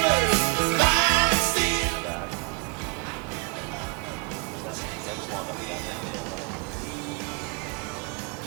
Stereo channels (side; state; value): left; quieter; 36.9 dB